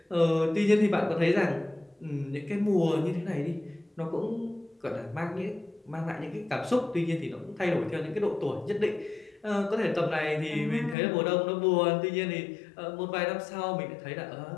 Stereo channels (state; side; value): drops out; right; at 11.0 s